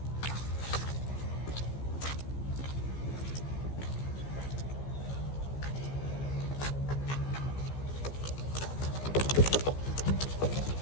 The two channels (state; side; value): late; right; 15 ms